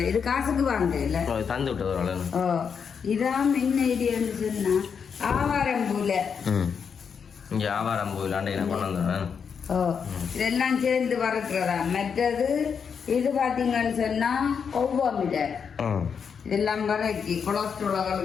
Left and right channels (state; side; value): quieter; right; 6.6 dB